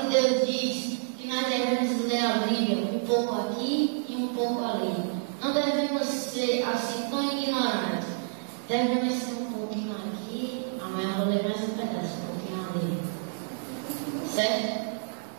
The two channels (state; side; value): silent; left; digital silence